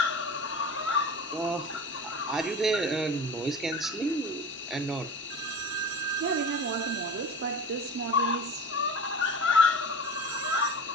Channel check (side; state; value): both; normal; correlation 0.34